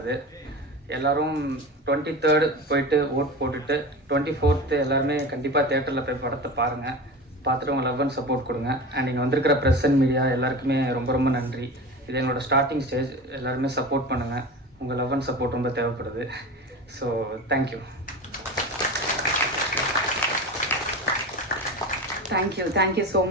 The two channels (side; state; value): both; normal; correlation 0.30